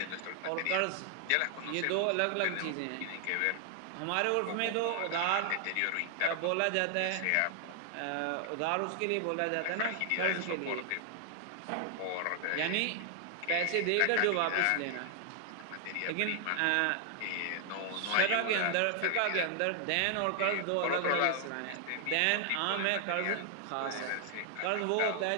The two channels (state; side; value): different; both; correlation 0.00